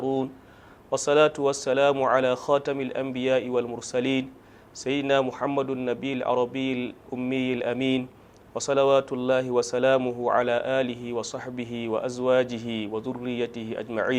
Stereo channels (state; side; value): identical; both; correlation 1.00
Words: والصلاة والسلام على خاتم الأنبياء والمرسلين سيدنا محمد النبي العربي الأمي الأمين وصلوات الله وسلامه على آله وصحبه وأزواجه وذريته